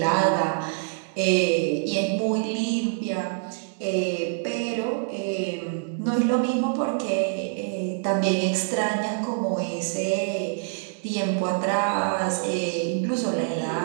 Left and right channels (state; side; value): silent; left; digital silence